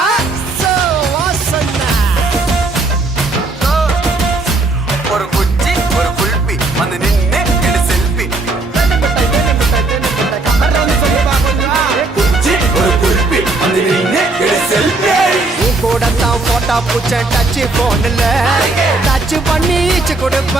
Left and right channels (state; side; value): quieter; left; 3.3 dB